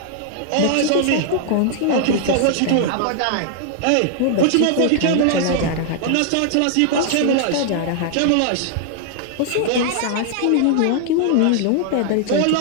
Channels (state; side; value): different; both; correlation 0.00